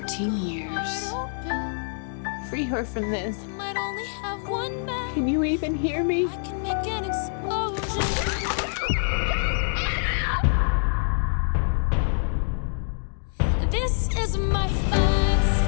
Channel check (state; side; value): silent; right; digital silence